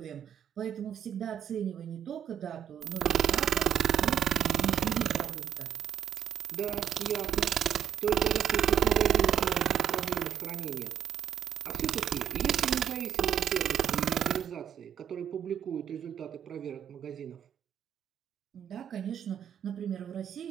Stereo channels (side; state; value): left; quieter; 9.2 dB